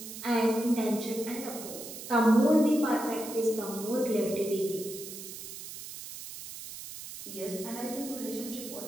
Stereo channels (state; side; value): noise; right; hiss, 11 dB below the sound